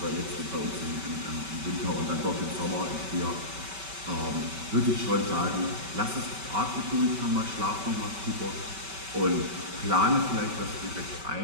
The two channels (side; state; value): left; late; 5.2 ms